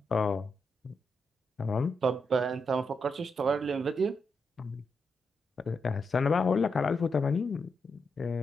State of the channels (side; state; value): both; normal; correlation 0.83